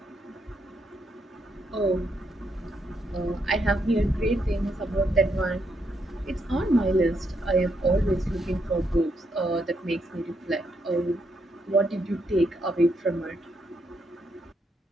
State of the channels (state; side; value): normal; both; correlation 0.78